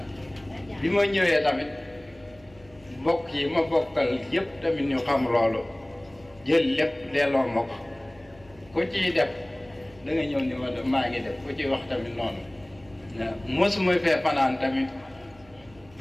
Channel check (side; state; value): right; noise; hum, 26 dB below the sound